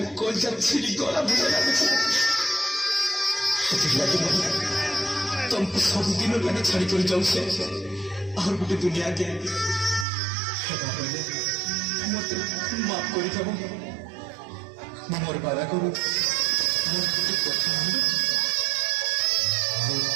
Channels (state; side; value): drops out; left; at 10.1 s